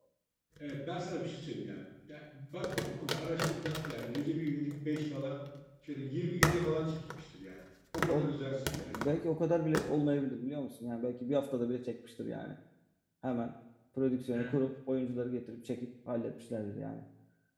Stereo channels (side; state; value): both; identical; correlation 1.00